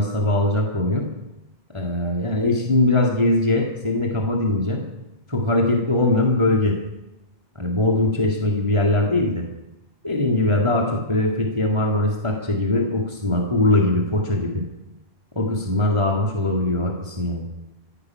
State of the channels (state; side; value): late; left; 1.3 ms